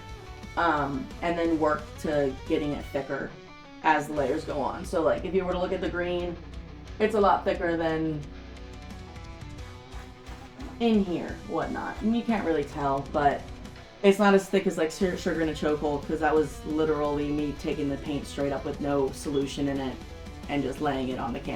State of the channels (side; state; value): both; identical; correlation 1.00